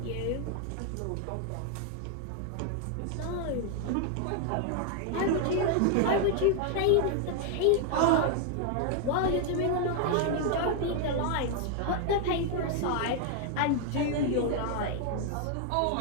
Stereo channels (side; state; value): both; different; correlation 0.00